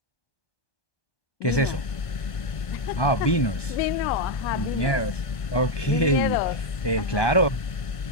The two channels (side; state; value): right; late; 1.5 ms